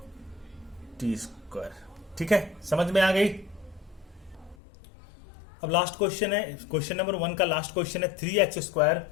टी स्क्वायर। ठीक है, समझ में आ गई। अब लास्ट क्वेश्चन है, क्वेश्चन नंबर 1 का लास्ट क्वेश्चन है 3x²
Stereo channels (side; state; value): right; drops out; at 4.5 s